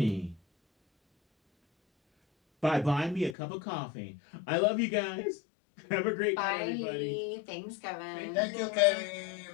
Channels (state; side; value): drops out; right; at 3.4 s